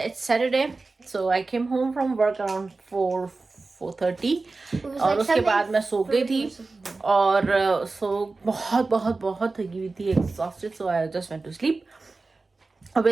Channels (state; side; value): quieter; left; 3.7 dB